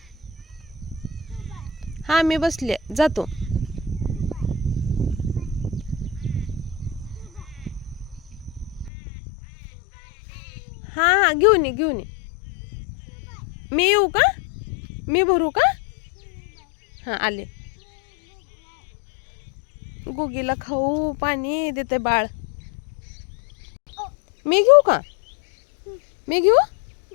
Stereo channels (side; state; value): right; drops out; at 8.9 s